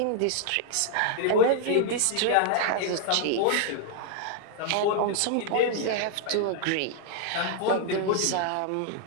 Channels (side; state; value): both; different; correlation 0.00